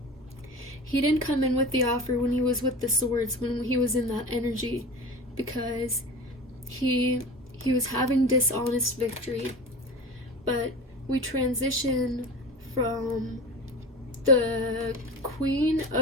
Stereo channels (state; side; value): normal; both; correlation 0.32